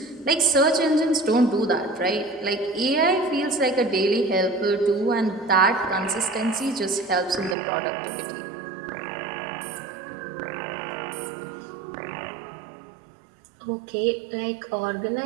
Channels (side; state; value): left; drops out; at 7.6 s